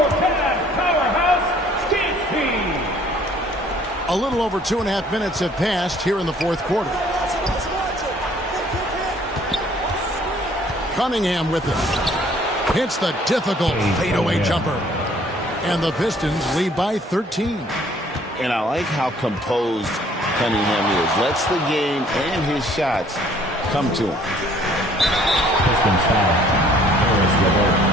Cavs powerhouse dance team. A little over 2.5 minutes have passed here in the fourth quarter. Cunningham with it. Hits the difficult fadeaway jumper. And the Pistons lead by 13. And I like how composed Cunningham is. Lets the game and his shots come to him. Pistons foul. Harris LeVert.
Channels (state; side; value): normal; both; correlation 0.58